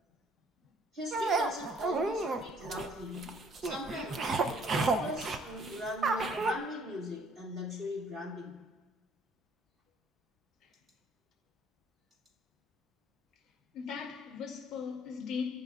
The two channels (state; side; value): normal; both; correlation 0.60